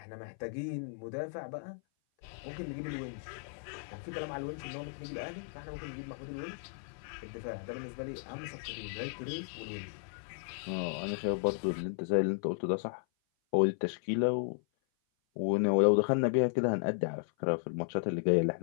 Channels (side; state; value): right; silent; 55 dB below the other